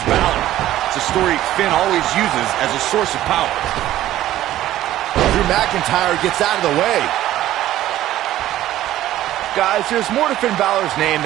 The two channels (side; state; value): left; quieter; 13.9 dB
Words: Balor. It's a story Finn always uses as a source of power. Drew McIntyre gets out of the way. Guys, there's more to Finn Balor's name